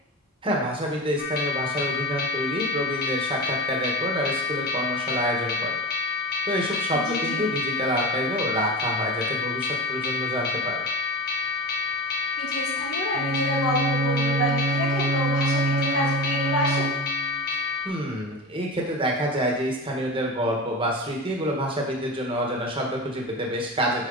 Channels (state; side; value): normal; both; correlation 0.28